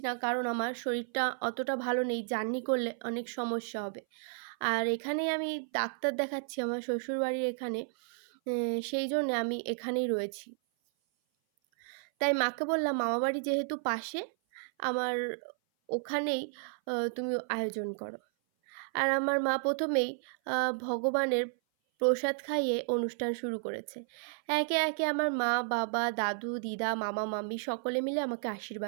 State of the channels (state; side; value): silent; left; 56 dB below the other